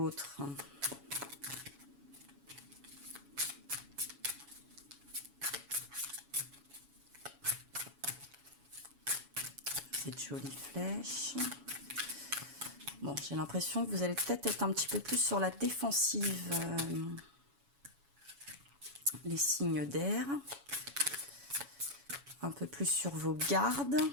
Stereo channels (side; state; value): left; late; 7.1 ms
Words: ? Cette jolie flèche. Bon, j'ai l'impression que vous allez peut-être être un petit peu plus sur la défensive, les signes d'air. Un peu plus sur vos gardes